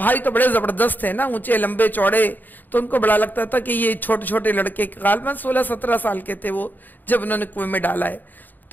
تو بڑے زبردست تھے نا، اونچے لمبے چوڑے، تو ان کو بڑا لگتا تھا کہ یہ چھوٹے چھوٹے لڑکے غالباً 16-17 سال کے تھے وہ جب انہوں نے کنویں میں ڈالا ہے.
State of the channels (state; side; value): late; right; 0.087 ms